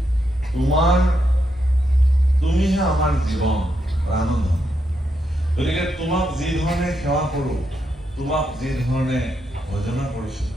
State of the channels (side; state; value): both; normal; correlation 0.81